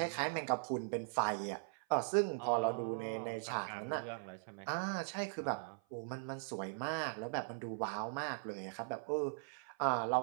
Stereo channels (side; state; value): left; silent; 51 dB below the other